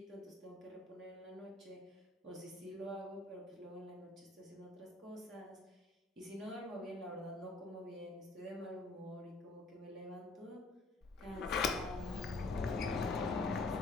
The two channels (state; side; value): quieter; right; 3.2 dB